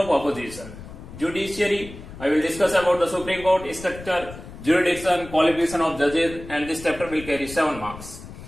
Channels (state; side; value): noise; left; rumble, 14 dB below the sound